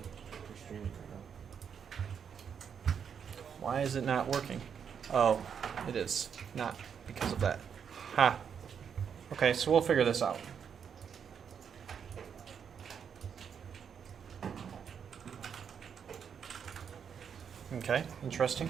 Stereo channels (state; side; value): quieter; left; 7.4 dB